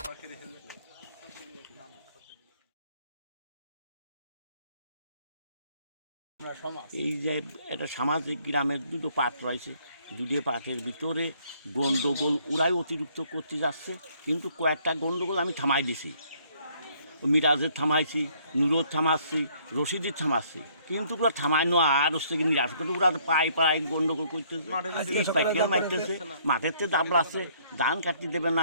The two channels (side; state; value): both; inverted; correlation -0.64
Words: এই যে একটা সামাজিক গ্রামের দুটো পাট রয়েছে, দুটো পাটের ভিতরে গন্ডগোল ওরাই অতিরিক্ত করতে যাচ্ছে, কিন্তু কয়েকটা গন্ডগোল আমি থামাই দিছি। মিরাজের থামাইছি, নুরোর থামাচ্ছি, রশিদের থামাচ্ছি, কিন্তু ওরা থামাইনো আর হচ্ছে কি নিরাশ করে ওরা পায়ে পায়ে গন্ডগোল করতেছে, পাইকার মারতেছে, মাঠের থেকে দাবড়াচ্ছে, ধান কাটতে দেবে